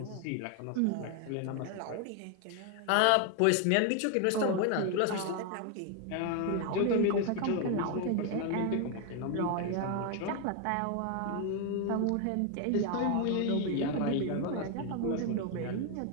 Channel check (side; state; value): both; different; correlation 0.01